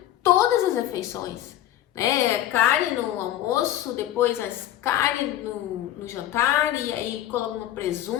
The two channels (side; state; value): right; quieter; 12.7 dB